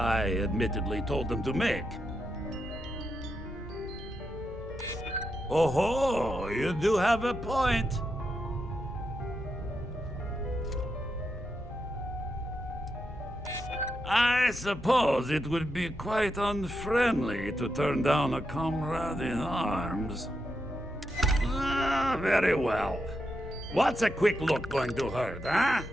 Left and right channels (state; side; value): normal; both; correlation 0.84